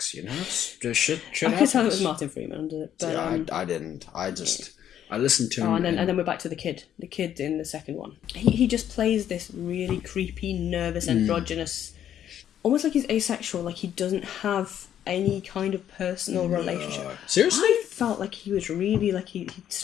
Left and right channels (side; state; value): right; quieter; 10.3 dB